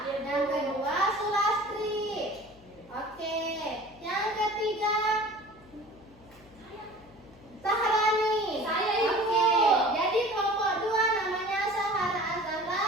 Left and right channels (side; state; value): left; noise; hum, 26 dB below the sound